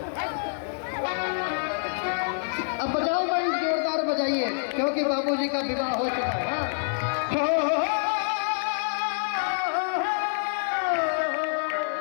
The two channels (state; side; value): silent; right; digital silence